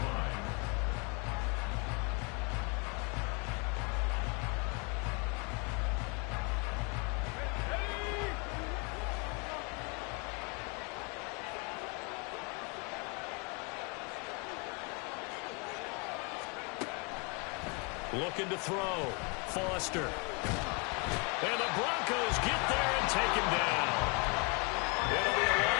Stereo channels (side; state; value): right; quieter; 33.0 dB